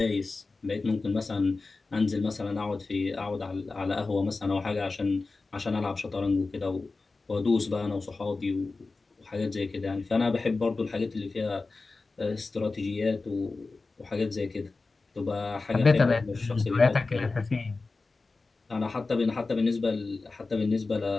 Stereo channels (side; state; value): right; quieter; 3.7 dB